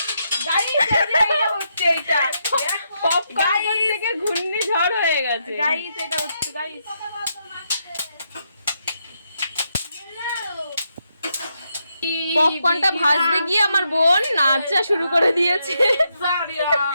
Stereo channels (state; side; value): inverted; both; correlation -0.80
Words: গাইস এটা হচ্ছে, এটা পপকর্ন থেকে ঘূর্ণিঝড় হয়ে গেছে গাইস, এটা হচ্ছে গাইস। পপকর্নটা ভাজতে গিয়ে আমার বোন নাচা শুরু করে দিয়েছে।